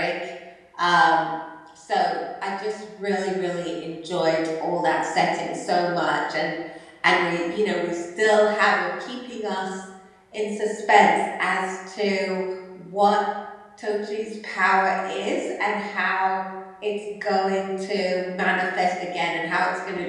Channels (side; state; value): both; identical; correlation 1.00